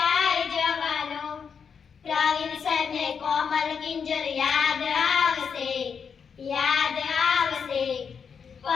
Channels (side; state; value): right; quieter; 6.5 dB